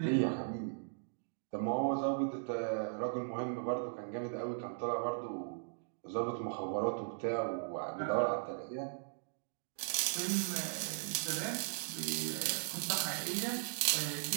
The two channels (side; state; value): left; silent; digital silence